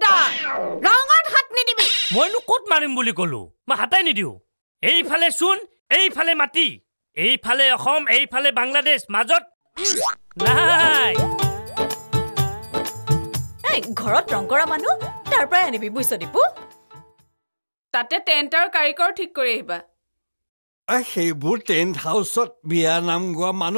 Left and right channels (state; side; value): inverted; both; correlation -1.00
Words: ৰঙত হাত নিদিবি মইনো ক'ত মাৰিম বুলি ক'লো মই হাতাই নিদিওঁ এইফালে চূণ এইফালে মাটি এইফালে অসম এইফালে বাংলাদেশ মাজত নাই ঘৰত ৰং কৰা মানুহ তাৰ পৰাই আনিবি বুইছ দীপু তাতে টেণ্ট আৰু কাৰিকৰ ঠিক কৰি আহিবা সেইবোৰ টেণ্ট হাউচত বিয়া নাম গোৱা